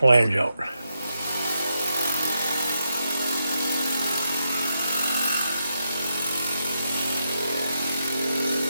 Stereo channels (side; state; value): both; inverted; correlation -0.83